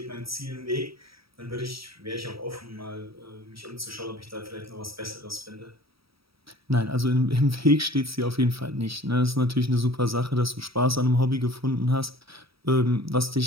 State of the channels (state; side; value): late; left; 0.76 ms